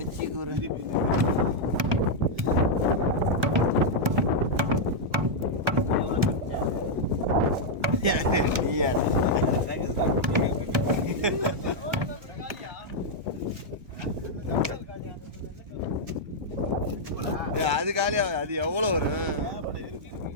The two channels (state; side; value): late; left; 1.2 ms